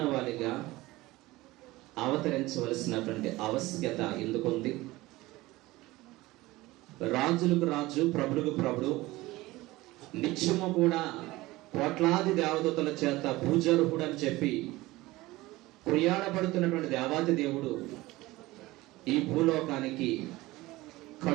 అవతరించవలసినటువంటి ఆవశ్యకత ఎందుకుంది? రాజులకు రాజు, ప్రభులకు ప్రభుడు, నిత్యము కూడా కోట్లాది దేవదూతల చేత పూజార్హుడు అని చెప్పి కొనియాడబడుతున్నటువంటి దేవాది దేవుడు ఈ భూలోకానికి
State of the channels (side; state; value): left; quieter; 19.3 dB